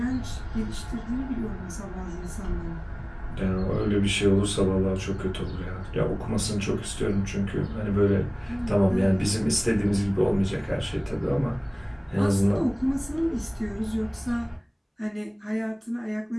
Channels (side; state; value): both; identical; correlation 1.00